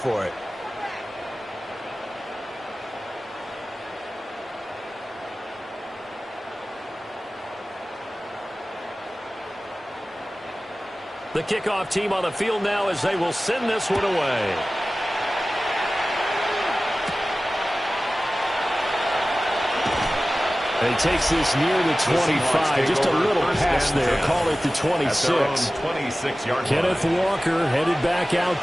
it. The kickoff team on the field now as they will send this one away. He takes this near the 25. Just a little pass there. Call it the 26. Kenneth Walker headed back out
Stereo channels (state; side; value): normal; both; correlation 0.96